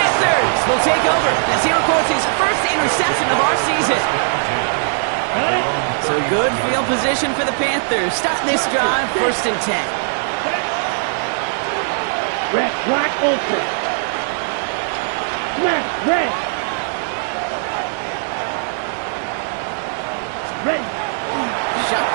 will take over as he records his first interception of our season. So good field position for the Panthers. Starting this drive, 1st and 10. Red, black, open. Smash, red. Ready.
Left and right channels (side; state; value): left; silent; 60 dB below the other